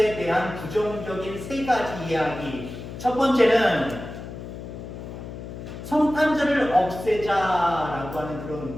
대한 부정적인 세 가지 이야기. 첫 번째는 성탄절을 없애자라고 하는 그런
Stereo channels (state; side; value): noise; left; hum, 10 dB below the sound